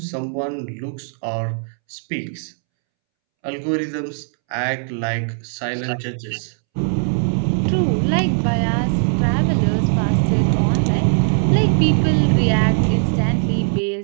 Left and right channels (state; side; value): silent; left; 66 dB below the other